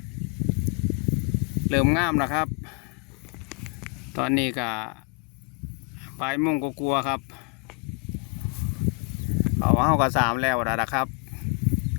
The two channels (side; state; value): right; quieter; 33.3 dB